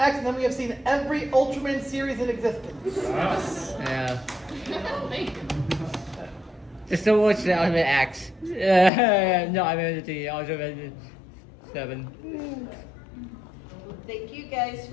and then we have seen every Ultraman series in existence. Yeah. Thank you. Just so watch the Ultimate X. No, I mean the Ultimate 7. Thank you guys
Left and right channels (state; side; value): drops out; right; at 8.9 s